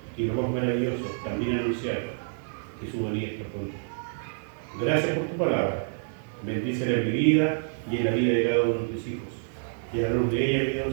Y lo más maravilloso, también anunciar que su venida está pronto. Gracias por tu palabra. Bendícela en mi vida y en la vida de cada uno de tus hijos. Y a la luz de ella, mi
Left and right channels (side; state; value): left; silent; digital silence